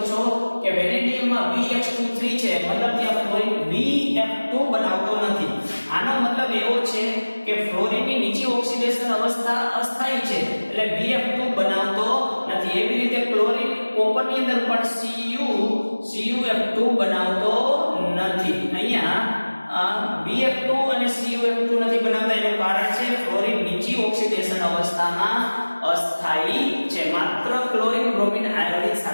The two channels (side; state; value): both; inverted; correlation -1.00